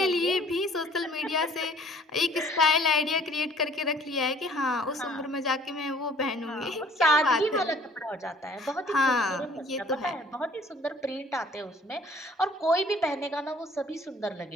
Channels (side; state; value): both; normal; correlation 0.56